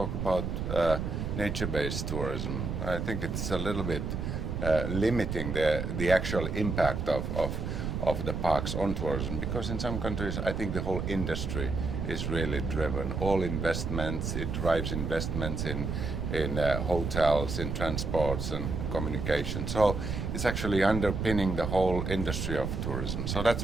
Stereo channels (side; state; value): right; noise; rumble, 3 dB below the sound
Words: about nature-based tourism. I think it's a little bit limiting the actual impact of the parks on tourism, because in some countries I think the whole industry is really driven. All investments, it drives investments in hotels, in transports and communication. So it's actually underpinning the whole industry of tourism. So